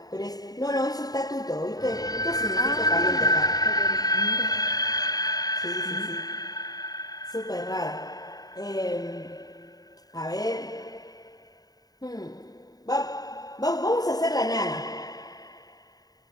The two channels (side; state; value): right; late; 0.18 ms